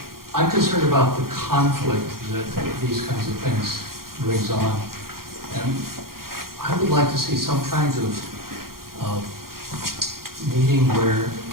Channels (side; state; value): left; late; 0.92 ms